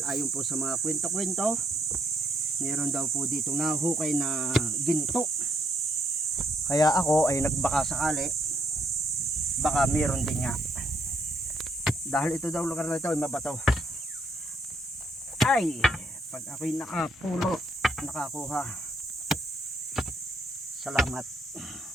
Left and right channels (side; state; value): both; normal; correlation 0.72